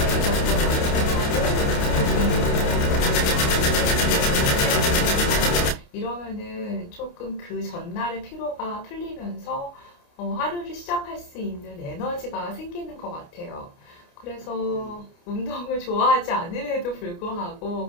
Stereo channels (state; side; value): late; right; 29 ms